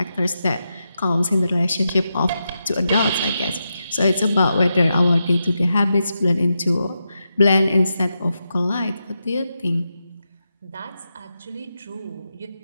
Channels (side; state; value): both; inverted; correlation -0.87